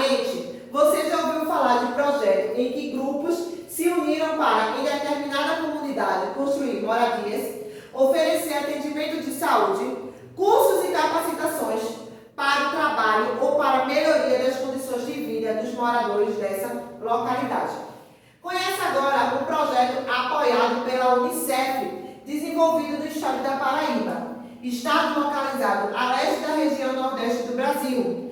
você já ouviu falar de projetos em que grupos se uniram para, em determinada comunidade, construir moradias, oferecer atendimento de saúde, cursos e capacitações para o trabalho ou para a melhoria das condições de vida dos moradores dessa localidade. Conheça agora um projeto apoiado pela Unicef, desenvolvido no estado da Paraíba, estado localizado a leste da região nordeste do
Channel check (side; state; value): both; identical; correlation 1.00